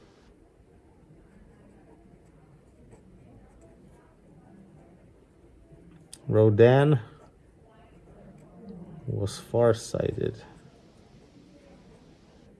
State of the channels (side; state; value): both; identical; correlation 1.00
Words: Rodin was farsighted.